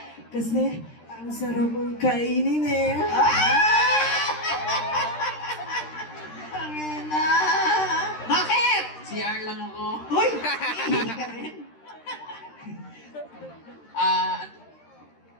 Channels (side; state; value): right; late; 13 ms